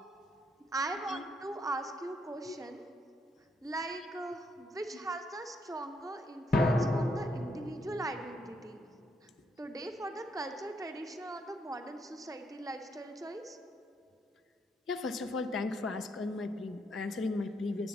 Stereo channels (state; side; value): normal; both; correlation 0.75